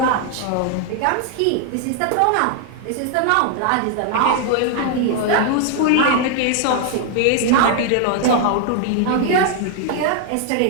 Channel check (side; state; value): both; different; correlation 0.00